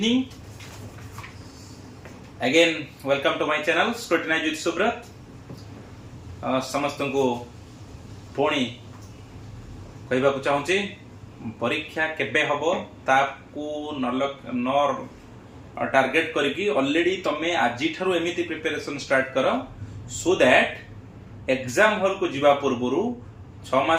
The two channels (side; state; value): both; identical; correlation 1.00